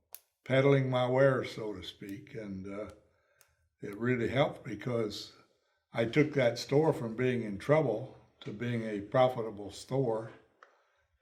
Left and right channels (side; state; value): both; identical; correlation 1.00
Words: peddling my wares, so to speak, and it really helped because I took that store from being in trouble to being a profitable store.